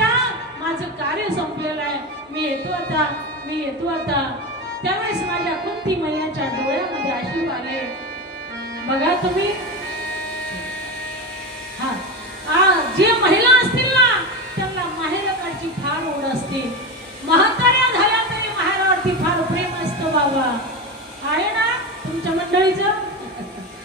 माझं कार्य संपलेलं आहे, मी येतो आता, मी येतो आता. त्यावेळेस माझ्या कुंती मैयाच्या डोळ्यामध्ये अश्रू आले. बघा तुम्ही, जे महिला असतील ना त्यांना माहेरकडची फार ओढ असते. म्हाताऱ्या झाल्या तरी माहेरावरती फार प्रेम असतं. बाबा आहे ना तुमच्या मंडळीचं,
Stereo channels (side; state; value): both; normal; correlation 0.20